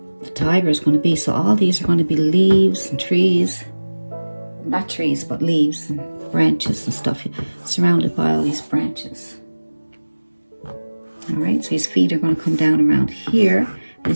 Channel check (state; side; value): inverted; both; correlation -1.00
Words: the tiger is going to be. So all these are going to be leaves and trees. Not trees, but leaves and branches and stuff. Surrounded by all these branches. All right, so his feet are going to come down around here.